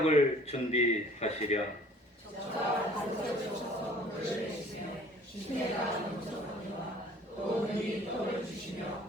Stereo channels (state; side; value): normal; both; correlation 0.52